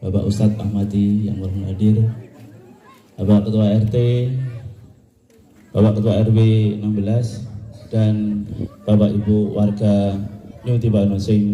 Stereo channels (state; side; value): identical; both; correlation 1.00